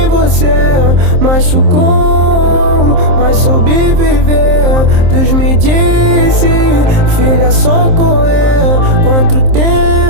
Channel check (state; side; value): late; left; 27 ms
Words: você, machucou, mas soube viver. Deus me disse, filha, só correr. Quanto